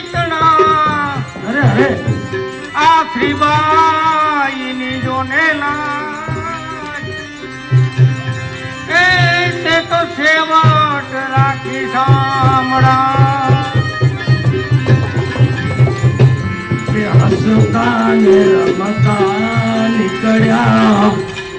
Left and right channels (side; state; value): both; identical; correlation 1.00